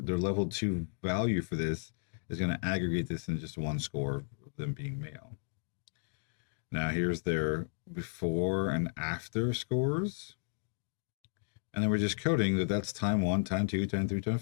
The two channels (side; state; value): right; silent; digital silence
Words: level 2 value for this is going to aggregate this in just one score of them being male. Now here's their before and after scores. And then we're just coding that that's time 1, time 2, time 3, time